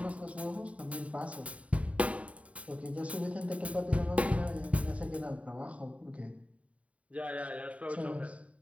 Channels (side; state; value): left; late; 0.066 ms